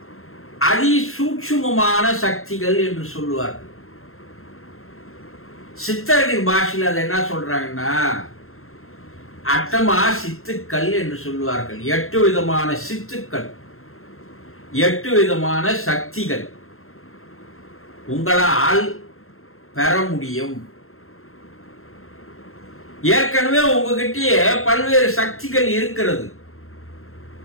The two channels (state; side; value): late; right; 0.62 ms